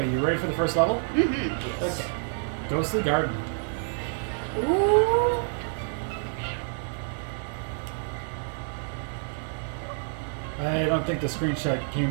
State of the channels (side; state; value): left; silent; 59 dB below the other